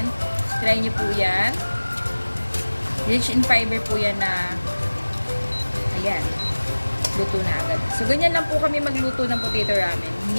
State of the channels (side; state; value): both; inverted; correlation -1.00